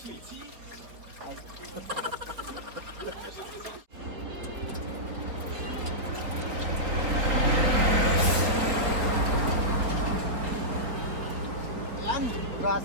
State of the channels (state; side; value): late; left; 4.5 ms